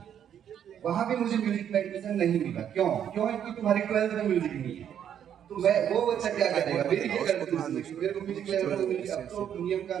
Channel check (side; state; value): left; quieter; 9.3 dB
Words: वहां भी मुझे म्यूजिक में एडमिशन नहीं मिला। क्यों? क्योंकि तुम्हारी 12th में म्यूजिक नहीं है, तो मैं वो बच्चा क्या करेगा, मेरी क्या करती है, मेरे को म्यूजिक लेना तो म्यूजिक, अब तो नियम